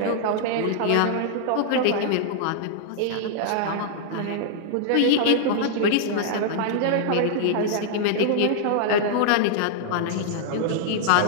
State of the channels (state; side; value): different; both; correlation -0.01